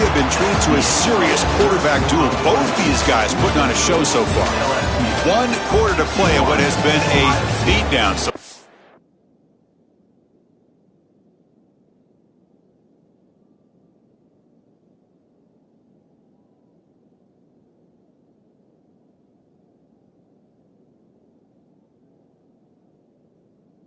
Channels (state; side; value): identical; both; correlation 1.00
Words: been treated to a serious quarterback duel. Both these guys putting on a show so far. 1 quarter to play in what has been a beatdown. So